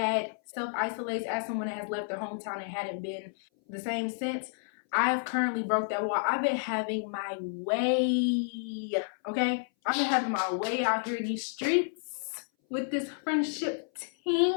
self-isolates, as someone that has left their hometown and hadn't been the same since, I've currently broke that wall. I've been having my way, okay? I've been having my way out here in these streets with this friendship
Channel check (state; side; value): silent; right; 57 dB below the other